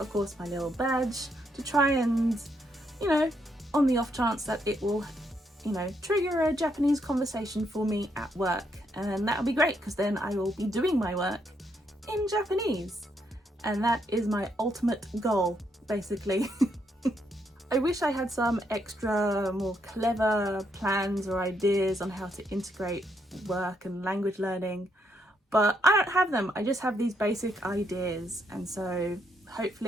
course my little badge to try and, you know, on the off chance that it will, you know, trigger a Japanese conversation for me at work. And that'll be great because then I will be doing my work in Japanese. And that is my ultimate goal, basically. I wish I had some extra, more clever plans or ideas on how to integrate work and language learning, but I don't have them. I just have these basic ideas, and so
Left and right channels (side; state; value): both; normal; correlation 0.76